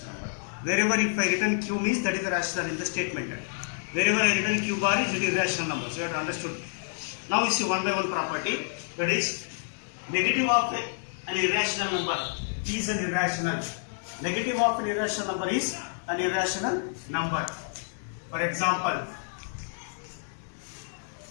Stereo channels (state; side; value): silent; right; digital silence